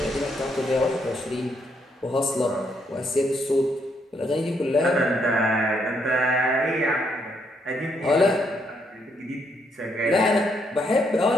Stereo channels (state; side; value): normal; both; correlation 0.74